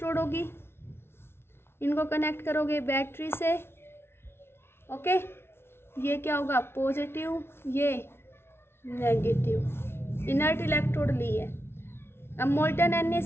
होगी, इनको कनेक्ट करोगे बैटरी से। ओके, ये क्या होगा? पॉजिटिव, ये नेगेटिव। इनर्ट इलेक्ट्रोड ली है। अब मोल्टन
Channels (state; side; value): late; right; 0.12 ms